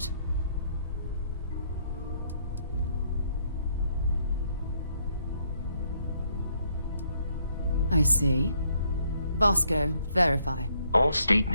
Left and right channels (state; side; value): inverted; both; correlation -0.71